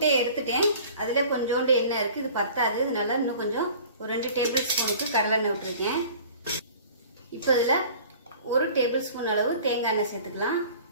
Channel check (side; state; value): both; inverted; correlation -0.46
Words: எடுத்துட்டேன். அதில் கொஞ்சோண்டு எண்ணெய் இருக்குது, இது பத்தாது. இதனால இன்னும் கொஞ்சம் ஒரு 2 டேபிள் ஸ்பூனுக்கு கடலெண்ணெய் விட்டுருக்கேன். இப்போ இதில் 1 டேபிள் ஸ்பூன் அளவு தேங்காய் எண்ணெய் சேர்த்துக்கலாம்.